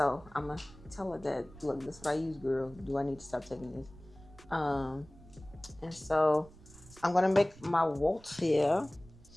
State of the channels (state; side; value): noise; right; rumble, 21 dB below the sound